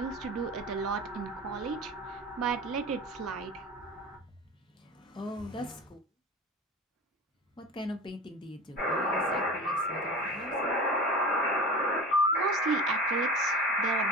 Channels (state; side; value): normal; both; correlation 0.34